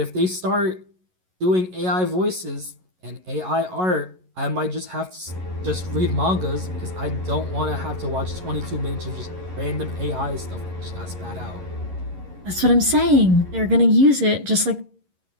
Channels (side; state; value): left; late; 11 ms